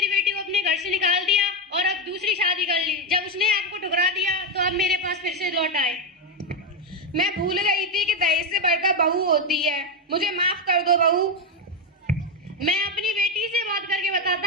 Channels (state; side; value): normal; both; correlation 0.09